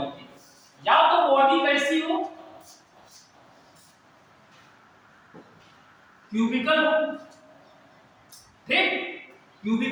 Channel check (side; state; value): both; identical; correlation 1.00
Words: के, या तो बॉडी कैसी हो, क्यूबिकल हो, ठीक।